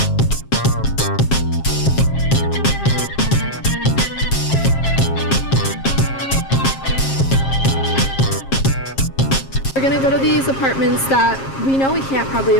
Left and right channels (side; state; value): right; late; 7.4 ms